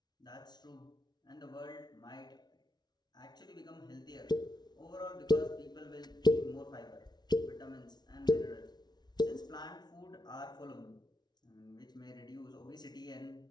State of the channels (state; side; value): late; right; 0.20 ms